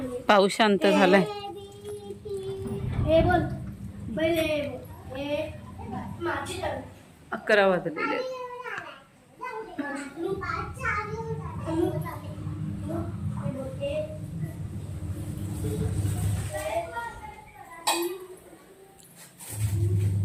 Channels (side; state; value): both; identical; correlation 1.00